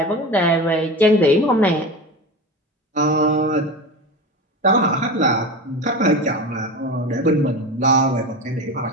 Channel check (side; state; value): both; normal; correlation 0.27